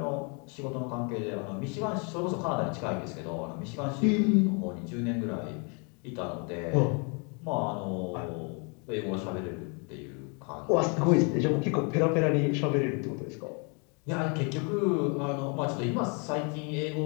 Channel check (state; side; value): quieter; right; 35.1 dB